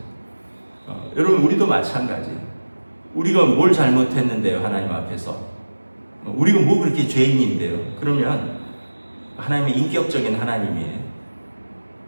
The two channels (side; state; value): both; inverted; correlation -1.00